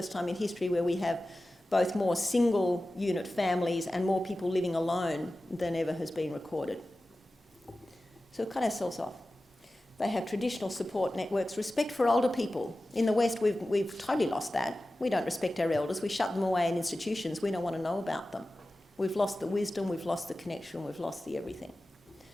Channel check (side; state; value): both; normal; correlation 0.95